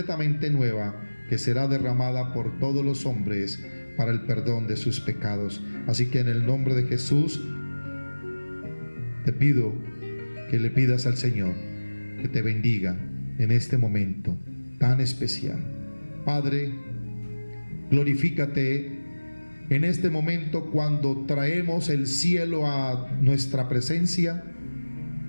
nueva, que será derramada por todos los hombres para el perdón de sus pecados. Así que en el nombre de Jesús te pido que le pidas al Señor que te bendiga en este momento tan especial. Padre, glorifícate en este momento cuando traemos el cielo a nuestra presencia,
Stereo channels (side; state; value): both; inverted; correlation -1.00